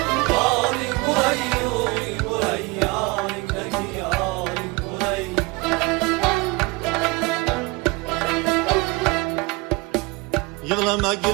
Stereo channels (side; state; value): left; quieter; 25.7 dB